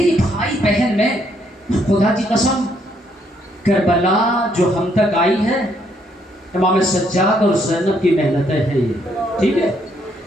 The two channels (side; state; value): both; normal; correlation 0.71